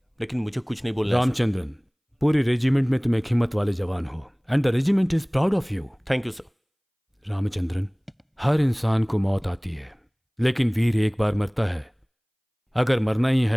लेकिन मुझे कुछ नहीं बोलना है। रामचंद्रन, पूरी रेजिमेंट में तुम एक हिम्मत वाले जवान हो, and the regiment is proud of you. Thank you sir. Ramachandran, हर इंसान को मौत आती है, लेकिन वीर एक बार मरता है। अगर मरना ही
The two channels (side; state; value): both; identical; correlation 1.00